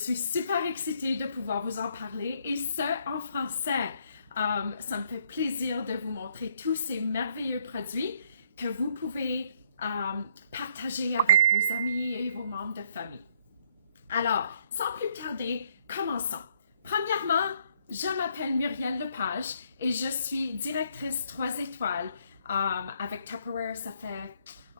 super excitée de pouvoir vous en parler et ce en français. Ça me fait plaisir de vous montrer tous ces merveilleux produits que vous pouvez partager avec vos amis et vos membres de famille. Alors, sans plus tarder, commençons. Premièrement, je m'appelle Muriel Lepage et je suis directrice 3 étoiles avec Tupperware. Ça fait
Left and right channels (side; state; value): both; inverted; correlation -0.68